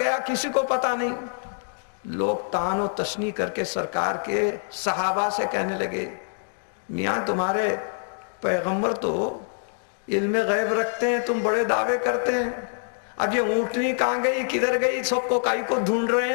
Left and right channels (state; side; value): silent; right; digital silence